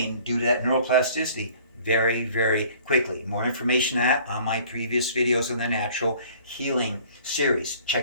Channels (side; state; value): both; inverted; correlation -0.52